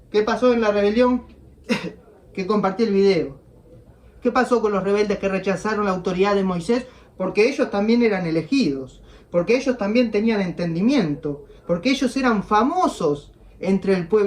¿qué pasó en la rebelión que compartí el video? ¿Qué pasó con los rebeldes que rechazaron la autoridad de Moisés? Porque ellos también eran elegidos, porque ellos también tenían entendimiento, porque ellos eran famosos entre el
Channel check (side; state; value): both; identical; correlation 1.00